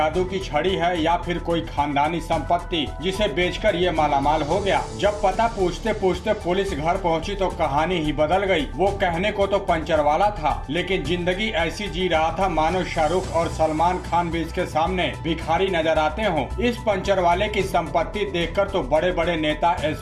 की छड़ी है या फिर कोई खानदानी संपत्ति जिसे बेचकर ये मालामाल हो गया। जब पता पूछते पूछते पुलिस घर पहुंची तो कहानी ही बदल गई। वो कहने को तो पंचर वाला था, लेकिन जिंदगी ऐसी जी रहा था मानो शाहरुख और सलमान खान भी इसके सामने भिखारी नजर आते हों। इस पंचर वाले की संपत्ति देखकर तो बड़े बड़े नेता,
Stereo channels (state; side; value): identical; both; correlation 1.00